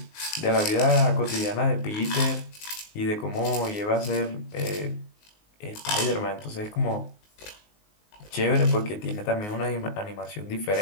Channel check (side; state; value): right; late; 19 ms